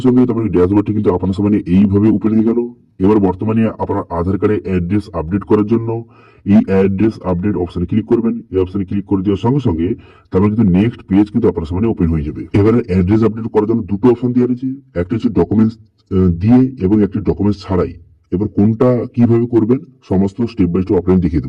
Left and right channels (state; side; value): identical; both; correlation 1.00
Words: সঙ্গে তারপরে ড্যাশবোর্ডটি কিন্তু আপনার সামনে এইভাবে ওপেন হয়ে গেল। এবার বর্তমানে আপনার আধার কার্ডে অ্যাড্রেস আপডেট করার জন্য এই অ্যাড্রেস আপডেট অপশনে ক্লিক করবেন। এই অপশনে ক্লিক করে দেওয়ার সঙ্গে সঙ্গে তারপরে কিন্তু নেক্সট পেজ কিন্তু আপনার সামনে ওপেন হয়ে যাবে। এবারে অ্যাড্রেস আপডেট করার জন্য দুটো অপশন দেওয়া রয়েছে, একটা হচ্ছে ডকুমেন্টস দিয়ে এবং একটি ডকুমেন্টস ছাড়াই। এবার কোনটা কিভাবে করবেন সমস্ত স্টেপ বাই স্টেপ আপনাকে দেখিয়ে